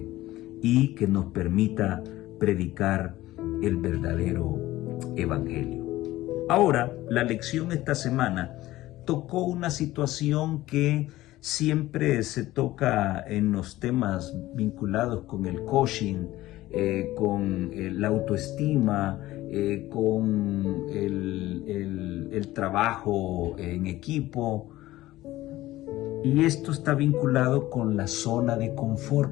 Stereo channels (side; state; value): right; quieter; 16.5 dB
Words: y que nos permita predicar el verdadero evangelio. Ahora, la lección esta semana tocó una situación que siempre se toca en los temas vinculados con el coaching, con la autoestima, con el trabajo en equipo. Y esto está vinculado con la zona de